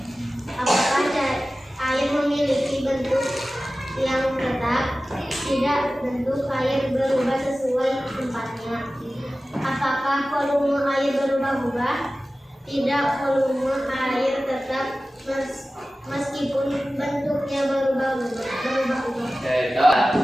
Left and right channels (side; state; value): both; normal; correlation 0.96